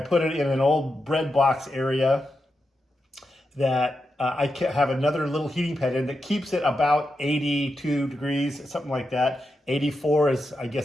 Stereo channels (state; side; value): normal; both; correlation 0.87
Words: put it in an old bread box area that I have another little heating pad in that keeps it about 82 degrees, something like that. 84 is, I